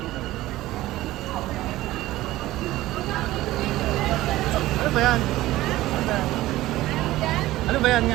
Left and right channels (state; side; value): quieter; left; 16.5 dB